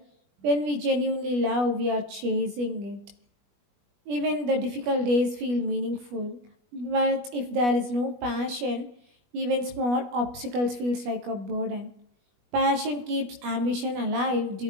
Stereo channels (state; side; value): late; left; 20 ms